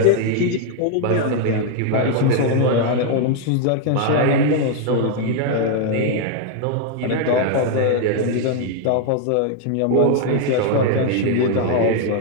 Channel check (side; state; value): both; different; correlation 0.00